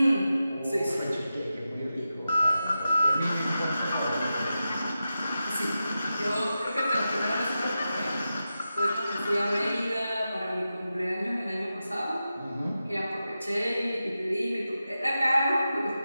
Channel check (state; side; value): inverted; both; correlation -0.91